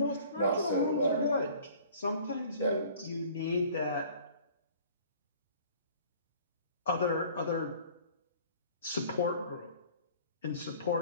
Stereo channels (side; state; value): both; inverted; correlation -0.50